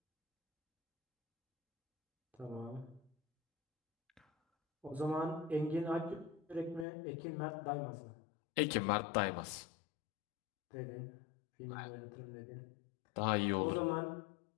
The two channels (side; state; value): right; drops out; at 6.9 s